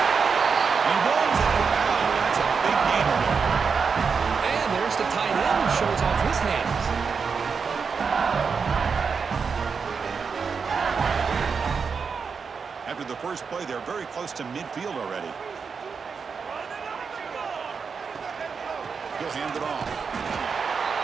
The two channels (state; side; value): quieter; left; 5.6 dB